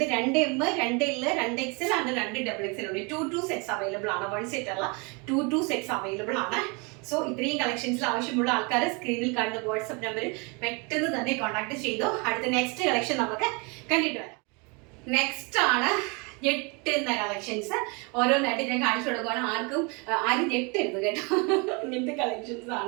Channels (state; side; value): quieter; left; 30.7 dB